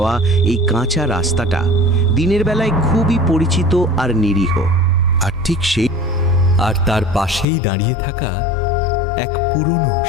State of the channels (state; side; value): drops out; right; at 7.5 s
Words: এই কাঁচা রাস্তাটা দিনের বেলায় খুবই পরিচিত আর নিরীহ। আর তার পাশেই দাঁড়িয়ে থাকা এক পুরনো